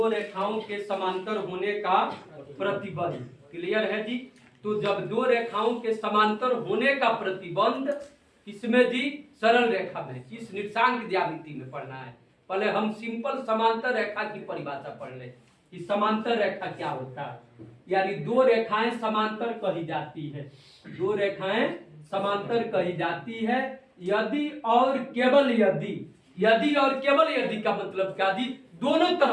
रेखाओं के समांतर होने का प्रतिबंध। क्लियर है जी? तो जब दो रेखाओं के समांतर होने का प्रतिबंध किसमें जी? सरल रेखा में, किस निर्देशांक ज्यामिति में पढ़ना है। पहले हम सिंपल समांतर रेखा की परिभाषा पढ़ लें कि समांतर रेखा क्या होता है। यानी दो रेखाएं समांतर कही जाती है, दो रेखाएं समांतर कही जाती है यदि और केवल यदि, यदि और केवल यदि का मतलब क्या जी? दोनों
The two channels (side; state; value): both; identical; correlation 1.00